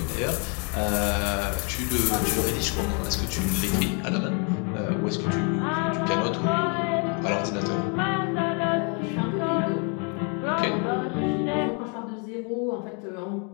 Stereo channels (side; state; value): right; quieter; 37.2 dB